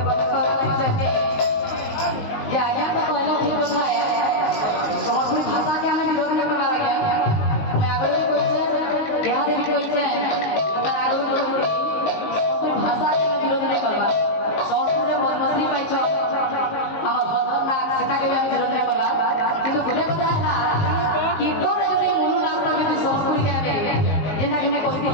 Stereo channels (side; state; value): right; late; 19 ms